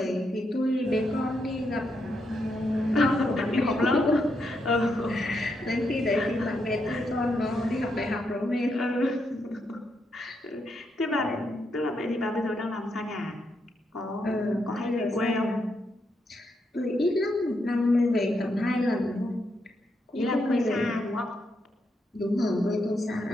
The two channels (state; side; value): normal; both; correlation 0.80